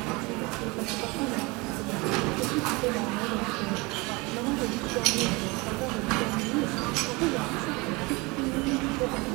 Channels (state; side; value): quieter; left; 25.5 dB